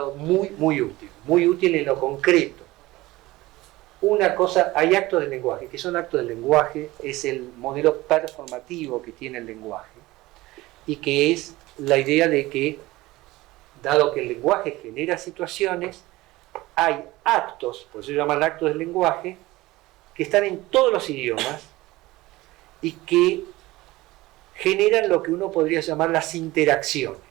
muy útil en lo concreto. Una cosa, hay actos del lenguaje. ¿Qué son actos del lenguaje? Es el modelo performativo que tiene el lenguaje, y que es la idea de que, dado que el lenguaje genera situaciones, hay actos, por eso se llaman actos del lenguaje, que están en todos los idiomas y que generan lo que uno podría llamar las interacciones.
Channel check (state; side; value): quieter; left; 19.1 dB